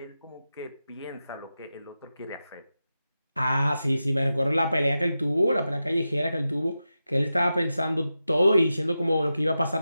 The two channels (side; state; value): both; inverted; correlation -0.91